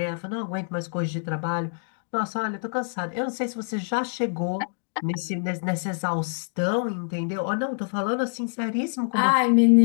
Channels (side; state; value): right; silent; digital silence